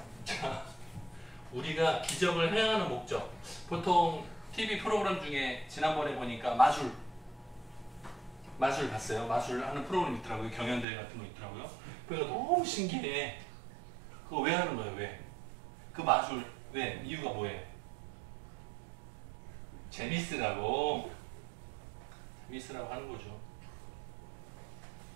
자, 우리가 기적을 행하는 목적. 보통 TV 프로그램 중에 지난번에 보니까 마술 봤어요. 마술 하는 프로그램 있더라고요. 경연대회 같은 거 있더라고요. 그래서 너무 신기해. 그거 왜 하는 거예요? 왜? 그 마술 왜? 이유가 뭐예요? 재밌으라고 하는 거죠.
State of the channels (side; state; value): left; drops out; at 10.9 s